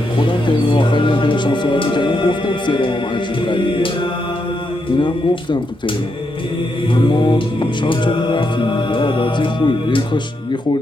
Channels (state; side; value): normal; both; correlation 0.81